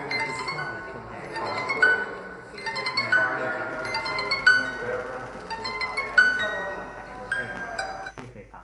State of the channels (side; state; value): both; identical; correlation 1.00